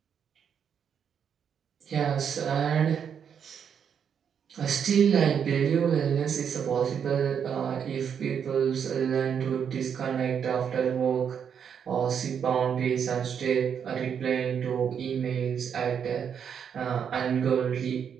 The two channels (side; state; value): left; quieter; 7.7 dB